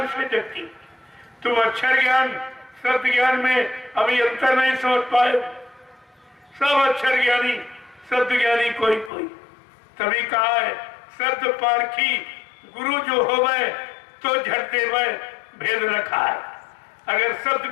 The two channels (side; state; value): right; drops out; at 9.1 s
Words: से जगती? तुम अक्षर ज्ञान शब्द ज्ञान में अभी अंतर नहीं समझ पाए। सब अक्षर ज्ञानी शब्द ज्ञानी कोई कोई, तभी कहा है शब्द पारखी गुरु जो होवे तो झट देवे भेद रखा है। अगर शब्द